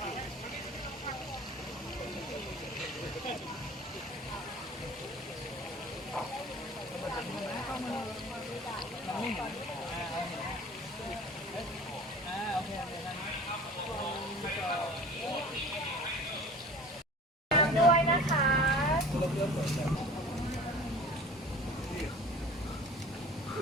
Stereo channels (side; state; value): both; normal; correlation 0.42